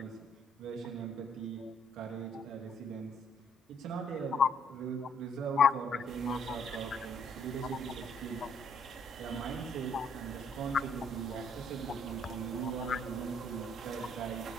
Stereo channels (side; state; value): both; normal; correlation 0.67